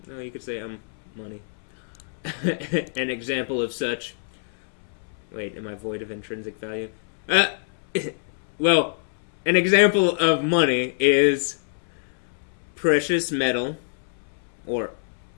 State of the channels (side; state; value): right; silent; 61 dB below the other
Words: no, you could say I'm money. An example of such. Wait, am I void of intrinsic value? Well, an example of money is precious metal, or